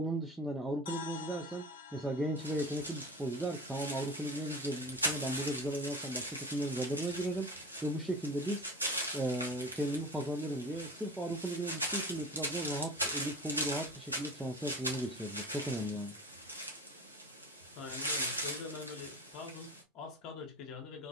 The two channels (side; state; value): both; normal; correlation 0.34